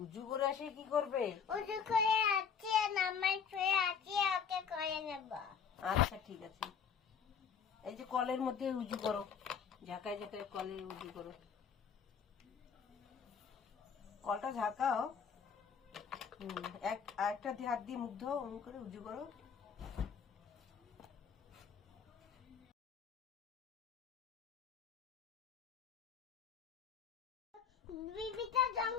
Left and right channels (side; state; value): right; quieter; 6.9 dB